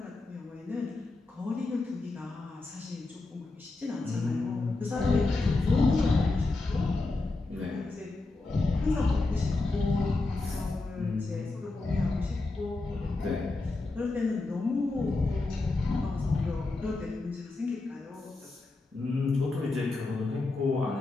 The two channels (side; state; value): right; quieter; 3.3 dB